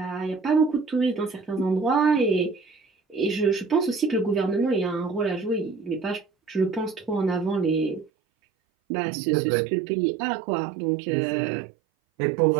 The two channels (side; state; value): left; drops out; at 8.1 s